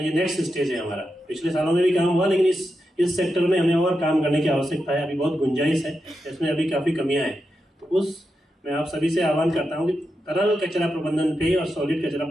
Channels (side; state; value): both; normal; correlation 0.87